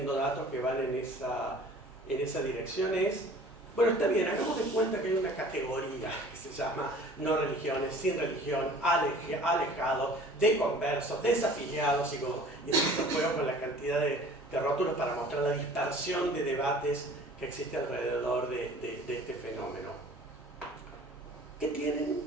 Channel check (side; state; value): right; noise; hum, 29 dB below the sound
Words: datos que van en esa dirección es, bueno, está bien, hagamos de cuenta que hay una categoría que se llama no religiones, sin religión, alejados, deconversos, desafiliados, y esto juego con la cantidad de rótulos para mostrar la dispersión de debates que existe alrededor de este fenómeno. ¿Qué tienen?